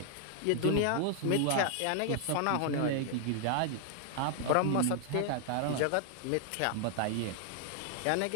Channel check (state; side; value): different; both; correlation 0.00